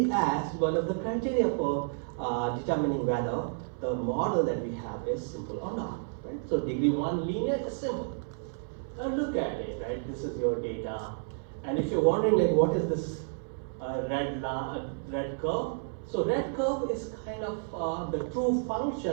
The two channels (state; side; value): silent; left; 57 dB below the other